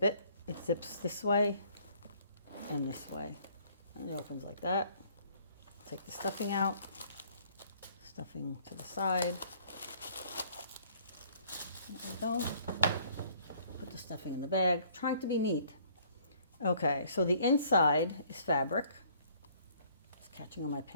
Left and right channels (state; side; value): inverted; both; correlation -0.60